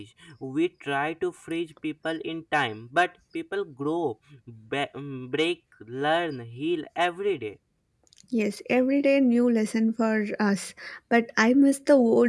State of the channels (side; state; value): both; identical; correlation 1.00